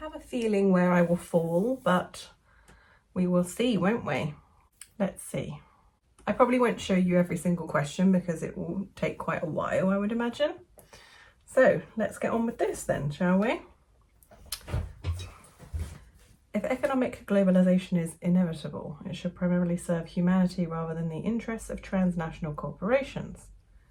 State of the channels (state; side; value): identical; both; correlation 1.00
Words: have a feeling where I will fall, but we will see, won't we? Let's see. I probably won't show you every single question because it will take quite a while, I would imagine. So let's get on with this then, shall we? If economic globalization is inevitable, it should primarily serve humanity rather than the interests of transnational corporations.